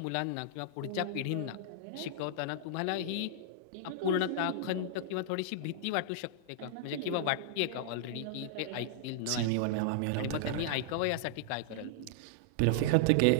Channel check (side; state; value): both; different; correlation -0.01